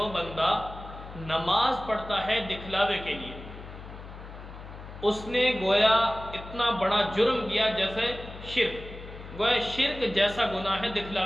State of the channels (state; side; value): noise; left; hum, 14 dB below the sound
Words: بندہ نماز پڑھتا ہے دکھلاوے کے لیے، اس نے گویا اتنا بڑا جرم کیا جیسے شرک، گویا شرک جیسا گناہ ہے